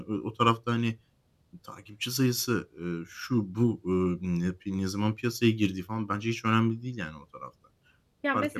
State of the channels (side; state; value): both; identical; correlation 1.00